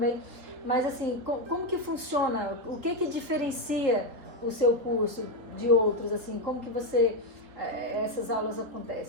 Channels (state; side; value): late; left; 3.8 ms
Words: Mas assim, como que funciona? O que diferencia o seu curso de outros? Assim, como que essas aulas